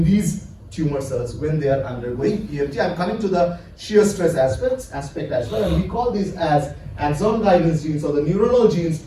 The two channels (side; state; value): both; identical; correlation 1.00